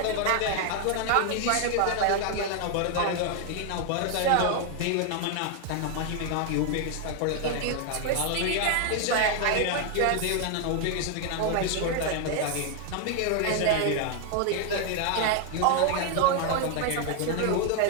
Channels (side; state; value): both; different; correlation 0.00